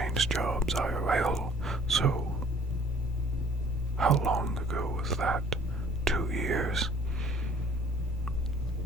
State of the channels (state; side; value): normal; both; correlation 0.54